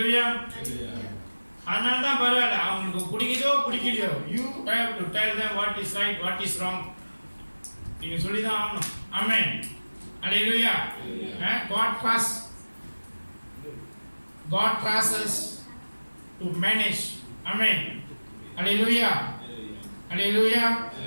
அதனால தான் பரவாயில்ல, அவங்களுக்கு பிடிக்குதோ பிடிக்கலையோ, you have to tell them what is right, what is wrong. நீங்க சொல்லிதான் ஆகணும். Amen. Hallelujah. God trusts us to manage. Amen. Hallelujah. Hallelujah.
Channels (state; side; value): inverted; both; correlation -1.00